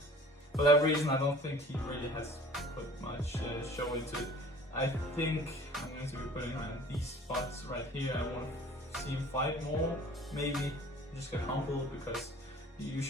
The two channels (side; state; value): both; normal; correlation 0.47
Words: for that reason, I don't think he really has put much show into it. I think I'm going to be putting him in these spots right here. I want to see him fight more. Maybe just get humbled because you